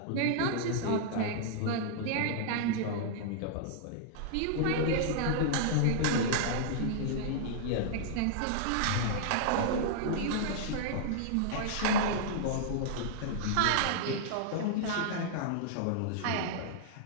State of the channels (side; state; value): both; different; correlation -0.01